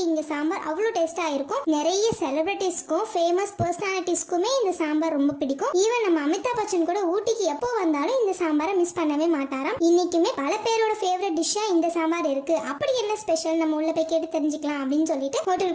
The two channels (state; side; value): identical; both; correlation 1.00